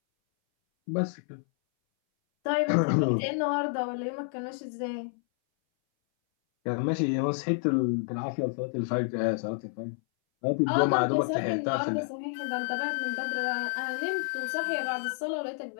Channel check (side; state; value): right; silent; 58 dB below the other